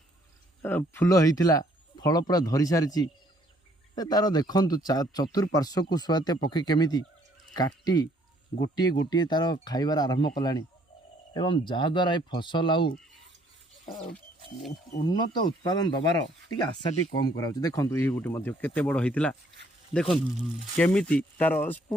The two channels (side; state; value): both; normal; correlation 0.64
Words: फूल होता फल पूरा धरी सारी तार देखु चतुर्पार्श्व को शुआ जातीय पक्षी केमी काटी गोटे गोटे तार खाइबार आरंभ कलानी एवं जहाद्वारा ये फसल आउ उन्नत उत्पादन दबार टी आशा टी कम करा देखो ये गोटे केते बड़ होता देखो केमिति तार